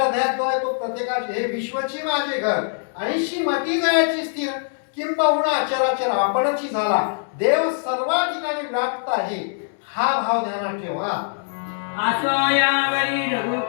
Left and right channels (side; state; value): right; silent; digital silence